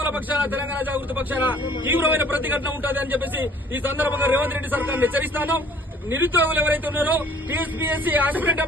పక్షాన తెలంగాణ జాగృతి పక్షాన తీవ్రమైన ప్రతిఘటన ఉంటుంది అని చెప్పేసి ఈ సందర్భంగా రేవంత్ రెడ్డి సర్కార్ హెచ్చరిస్తాను. నిరుద్యోగులు ఎవరైతే ఉన్నారో, టీఎస్పీఎస్సీ ఆస్పిరెంట్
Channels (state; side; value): normal; both; correlation 0.54